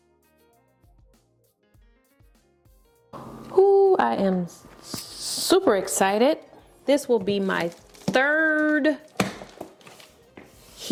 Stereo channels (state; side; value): identical; both; correlation 1.00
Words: Ooh, I am super excited. This will be my third